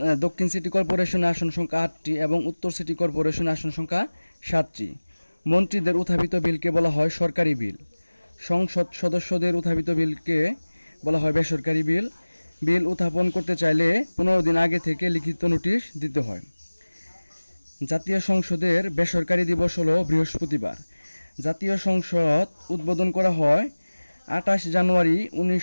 দক্ষিণ সিটি কর্পোরেশনে আসন সংখ্যা 8টি এবং উত্তর সিটি কর্পোরেশনে আসন সংখ্যা 7টি। মন্ত্রীদের উত্থাপিত বিলকে বলা হয় সরকারি বিল। সংসদ সদস্যদের উত্থাপিত বিলকে বলা হয় বেসরকারি বিল। বিল উত্থাপন করতে চাইলে 15 দিন আগে থেকে লিখিত নোটিশ দিতে হয়। জাতীয় সংসদের বেসরকারি দিবস হলো বৃহস্পতিবার। জাতীয় সংসদ উদ্বোধন করা হয় 28 জানুয়ারি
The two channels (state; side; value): inverted; both; correlation -1.00